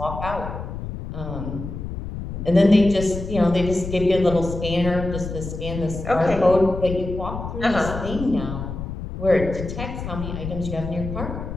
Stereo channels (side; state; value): left; noise; rumble, 7 dB below the sound